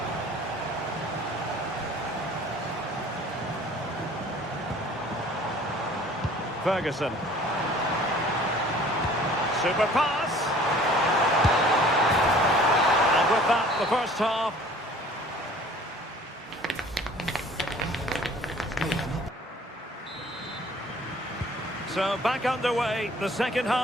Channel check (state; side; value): normal; both; correlation 0.51